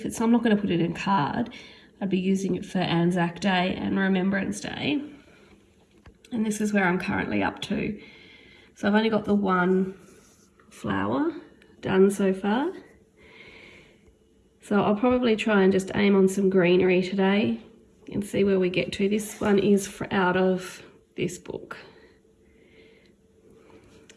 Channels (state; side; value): identical; both; correlation 1.00